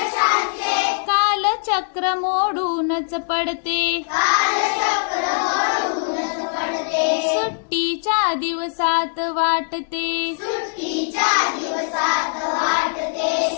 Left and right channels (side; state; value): right; silent; 64 dB below the other